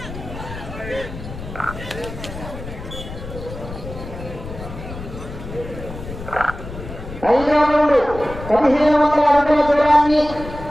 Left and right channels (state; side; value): noise; left; rumble, 11 dB below the sound